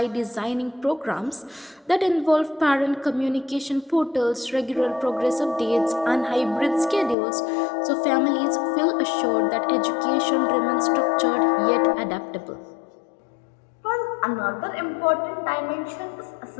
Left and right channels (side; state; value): right; drops out; at 7.2 s